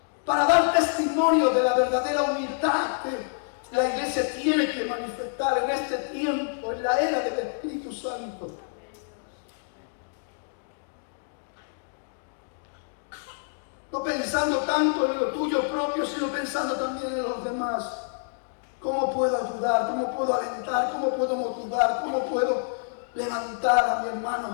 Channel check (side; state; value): right; silent; digital silence